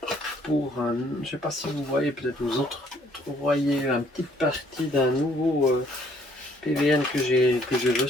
je ne sais pas si vous voyez, peut-être vous autres voyez une petite partie d'un nouveau PVN que j'ai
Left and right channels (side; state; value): both; normal; correlation 0.63